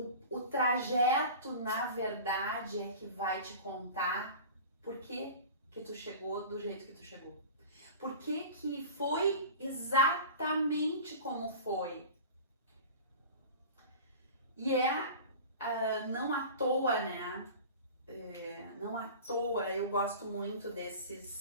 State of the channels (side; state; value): both; inverted; correlation -0.36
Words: trajeto, na verdade, é que vai te contar por que tu chegou do jeito que tu chegou. Por que foi exatamente como foi. E não à toa, né? Não à toa, eu gosto muito